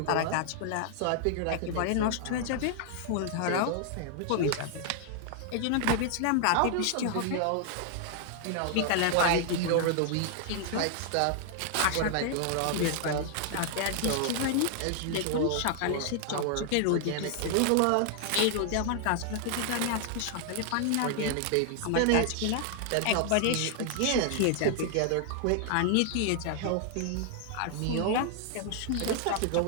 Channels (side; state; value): both; different; correlation 0.00